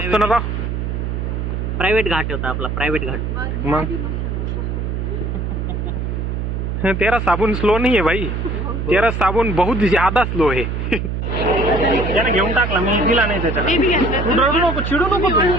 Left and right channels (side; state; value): right; noise; hum, 2 dB below the sound